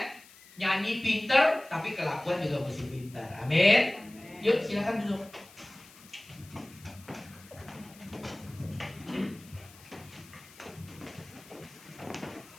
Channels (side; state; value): left; noise; hiss, 22 dB below the sound